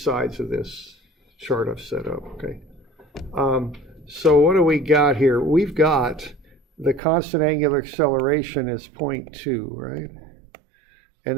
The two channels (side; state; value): left; drops out; at 7.0 s